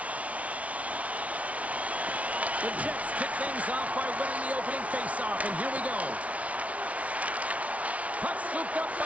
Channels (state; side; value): late; left; 0.066 ms